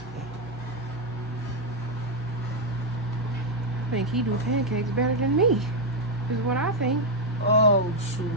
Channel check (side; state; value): both; normal; correlation 0.01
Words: I think he do pancakes better than me. Is what I think. Oh, shoot.